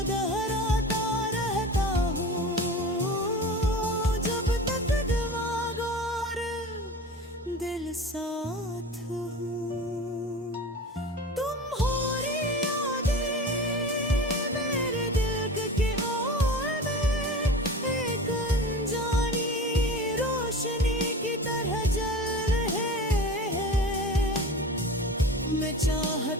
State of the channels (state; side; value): normal; both; correlation 0.34